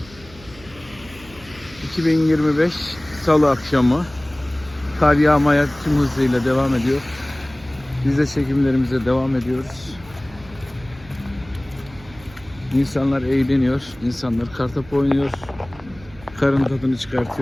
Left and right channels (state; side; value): noise; right; hum, 21 dB below the sound